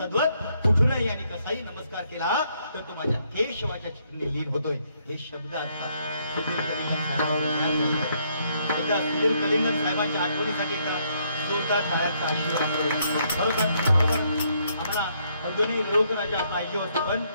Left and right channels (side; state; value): both; inverted; correlation -0.71